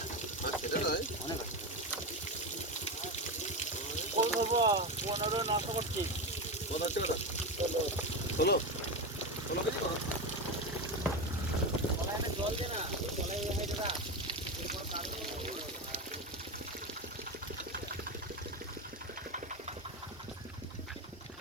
সেটা নয় অনেক ওই বাবা 15 নষ্ট করছি কত হচ্ছে কত 16 কেজি করো জল দে না জলে হয়ে যাবে এরপর কাজ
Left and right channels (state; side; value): normal; both; correlation 0.16